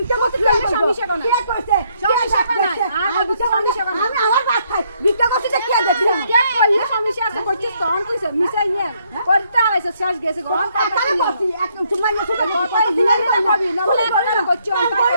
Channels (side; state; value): both; inverted; correlation -0.71